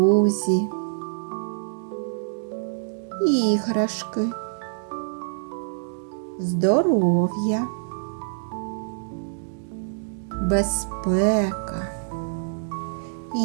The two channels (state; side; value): silent; left; digital silence